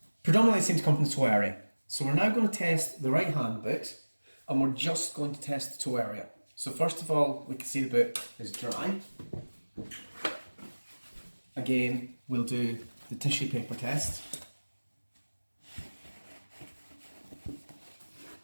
Predominantly it seems to come from the toe area. So we're now going to test the right hand boot and we're just going to test the toe area. So first of all, we can see the boot is dry. Again, we'll do the tissue paper test.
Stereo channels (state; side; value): inverted; both; correlation -1.00